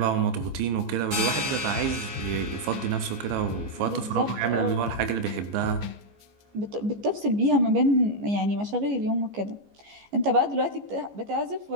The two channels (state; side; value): late; left; 14 ms